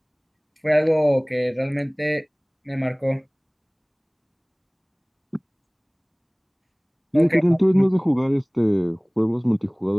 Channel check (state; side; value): identical; both; correlation 1.00